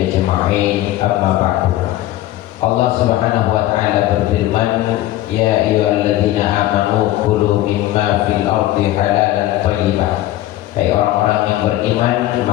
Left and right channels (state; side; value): quieter; right; 14.8 dB